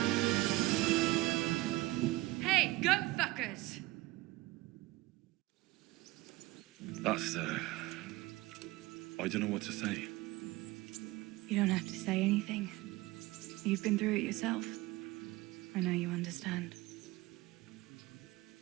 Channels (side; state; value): left; quieter; 19.8 dB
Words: Hey, go fuckers! That's, I don't know what to say. You don't have to say anything. You've been through it yourself. I know you understand.